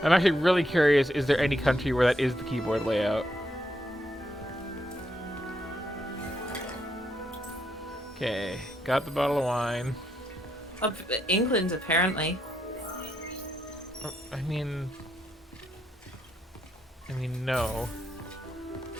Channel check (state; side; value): normal; both; correlation 0.78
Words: I'm actually really curious, is there any country where that is the keyboard layout? Okay, got the bottle of wine. Up England, apparently. I mean, no.